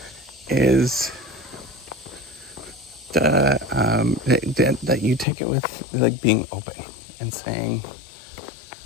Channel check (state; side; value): drops out; right; at 5.2 s